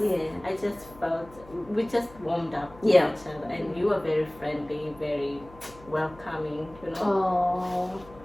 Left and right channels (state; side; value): noise; left; hum, 21 dB below the sound